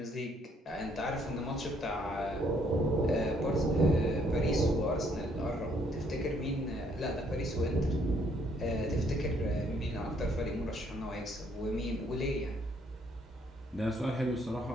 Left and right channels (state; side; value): normal; both; correlation 0.67